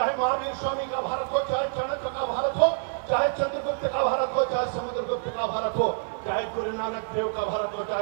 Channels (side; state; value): left; silent; 60 dB below the other